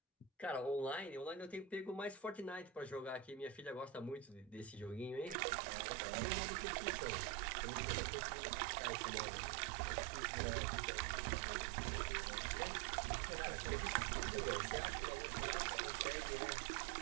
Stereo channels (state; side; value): drops out; left; at 5.4 s